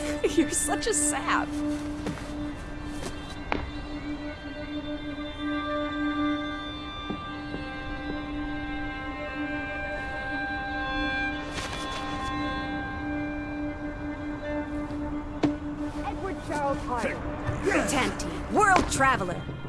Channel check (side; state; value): both; identical; correlation 1.00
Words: You're such a sap. Edward Charles Hyde. Tanty, world traveler,